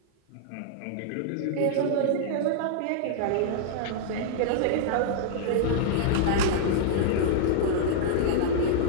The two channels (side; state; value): both; different; correlation -0.01